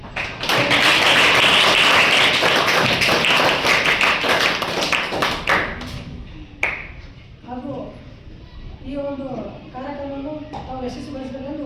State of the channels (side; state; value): both; identical; correlation 1.00